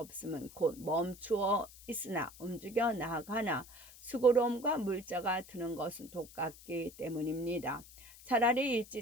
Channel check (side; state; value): left; noise; hiss, 19 dB below the sound